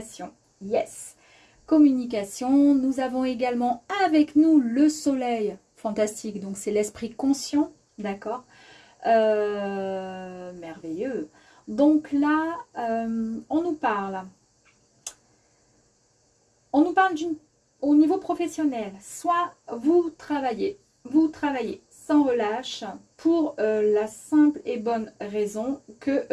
Yes. Communication. Nous avons également avec nous le soleil. Fantastique. Donc, c'est l'esprit conscient. D'accord. Merveilleux. Donc là, on nous parle. On nous parle au niveau professionnel. Soit vous travaillez sans relâche pour la simple et bonne raison que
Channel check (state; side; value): identical; both; correlation 1.00